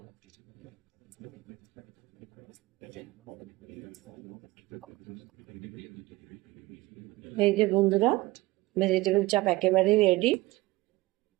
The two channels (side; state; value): left; quieter; 20.1 dB